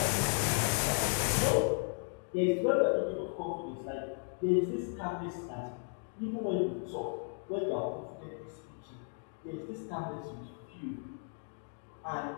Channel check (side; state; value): right; silent; 54 dB below the other